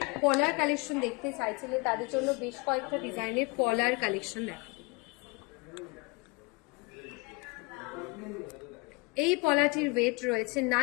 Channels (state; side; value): quieter; right; 27.5 dB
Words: পলার কালেকশন দেখতে চাইছিলেন তাদের জন্য বেশ কয়েকটা ডিজাইনের পলার কালেকশন দেখাবো। এই পলাটির ওয়েট রয়েছে